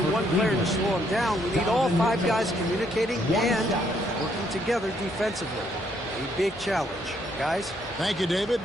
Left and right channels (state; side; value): normal; both; correlation 0.71